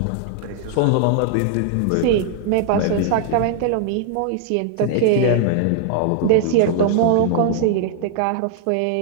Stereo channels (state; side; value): different; both; correlation 0.00